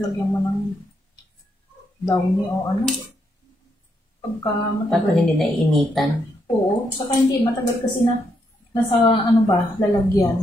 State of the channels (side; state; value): both; normal; correlation 0.78